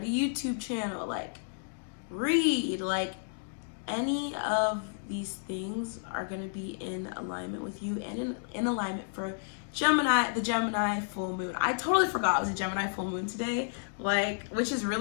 a YouTube channel, like read, like any of these things are going to be in alignment with you and in alignment for Gemini, the Gemini full moon. I totally forgot it was a Gemini full moon today, like, which is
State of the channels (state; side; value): silent; right; digital silence